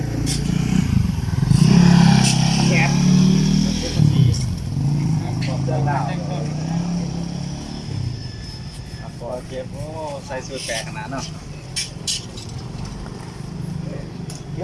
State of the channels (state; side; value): identical; both; correlation 1.00